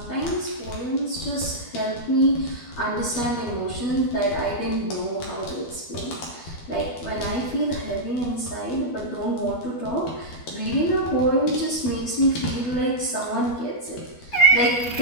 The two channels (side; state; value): right; late; 12 ms